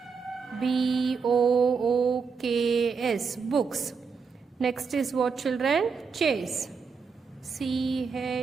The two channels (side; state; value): left; quieter; 5.4 dB